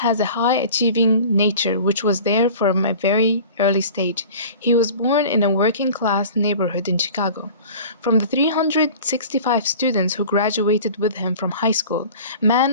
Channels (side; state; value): both; inverted; correlation -0.42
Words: a high-achieving nature which was there from a very early stage. He was born in a working-class neighborhood in Chicago. From the 365 students who graduated with him from high school,